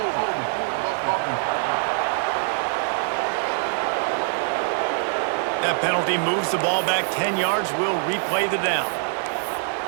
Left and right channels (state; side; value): silent; left; digital silence